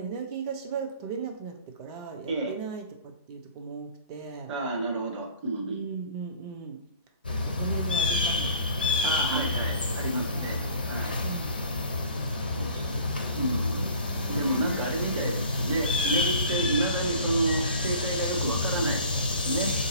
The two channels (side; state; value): both; inverted; correlation -0.49